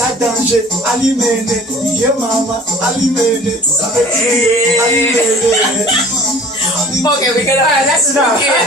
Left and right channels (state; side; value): normal; both; correlation 0.48